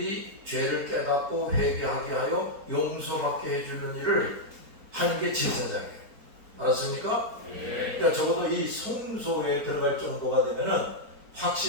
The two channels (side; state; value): left; late; 4.2 ms